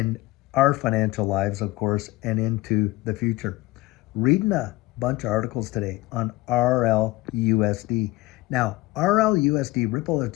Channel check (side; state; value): right; quieter; 19.5 dB